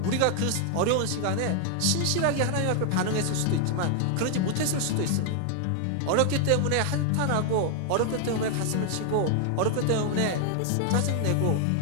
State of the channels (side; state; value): both; different; correlation 0.00